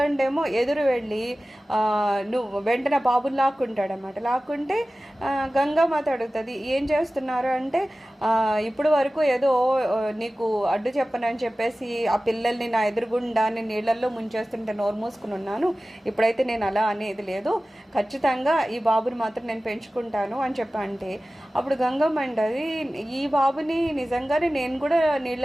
ఎదురు వెళ్ళి నువ్వు వెంటనే బాబుని లాక్కుంటాడనమాట. లాక్కుంటే గంగామాత అడుగుతుంది, ఏం చేస్తున్నారు అంటే, ఇప్పుడు వరకు ఏదో నీకు అడ్డు చెప్పనని చెప్పేసి ఆ పిల్లల్ని నా ఎదురుగుండా నేను నీళ్ళల్లో ముంచేస్తుంటే నోరు మూసుకుని ఉన్నాను, ఇప్పుడైతే నేను అలా అనేది లేదు, ఖచ్చితంగా ఈ బాబుని మాత్రం నేను పెంచుకుంటాను అని చెప్పంటే, అప్పుడు గంగమ్మ అంటది, ఈ బాబుని నిజంగానే నేను కూడా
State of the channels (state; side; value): normal; both; correlation 0.96